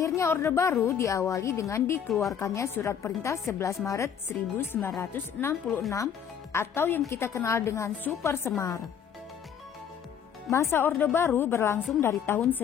Orde Baru diawali dengan dikeluarkannya Surat Perintah 11 Maret 1966 atau yang kita kenal dengan Super Semar. Masa Orde Baru berlangsung dari tahun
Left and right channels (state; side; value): quieter; right; 8.1 dB